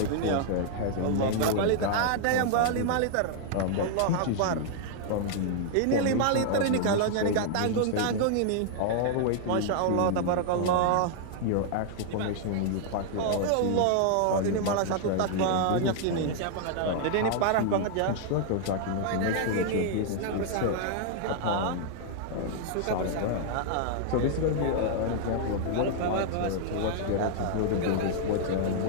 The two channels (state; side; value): different; both; correlation -0.01